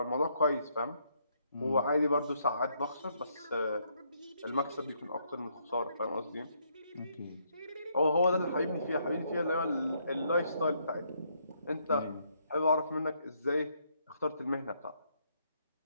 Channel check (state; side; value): inverted; both; correlation -0.73